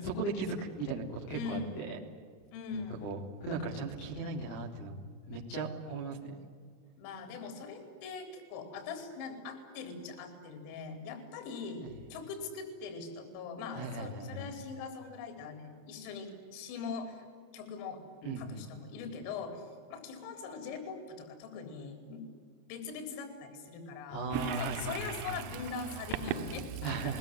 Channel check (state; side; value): late; right; 30 ms